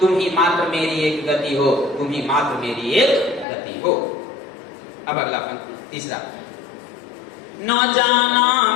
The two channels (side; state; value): right; drops out; at 3.5 s